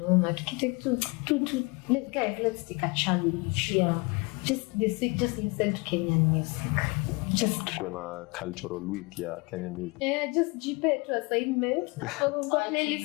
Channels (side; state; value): right; quieter; 27.8 dB